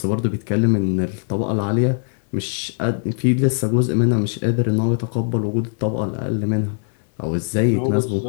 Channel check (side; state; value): right; silent; 65 dB below the other